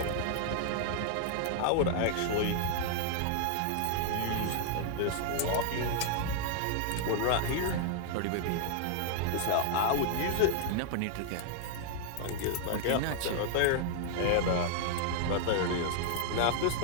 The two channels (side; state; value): both; different; correlation -0.01